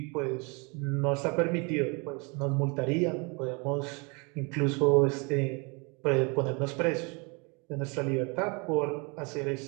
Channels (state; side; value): quieter; left; 30.9 dB